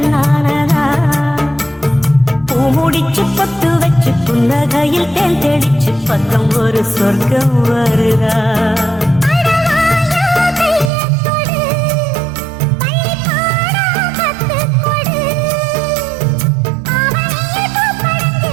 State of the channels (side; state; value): left; drops out; at 10.9 s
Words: பூமுடிச்சு பொத்து வச்சு புன்னகையில் தேன் தெளிச்சு பக்கம் ஒரு சொர்க்கம் வருதா